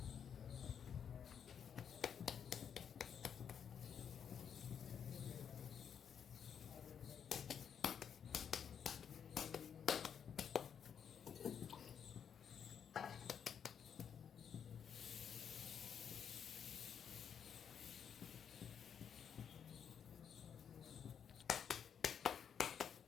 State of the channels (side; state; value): right; quieter; 7.8 dB